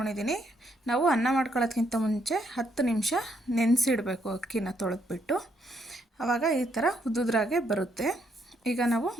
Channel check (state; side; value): normal; both; correlation 0.73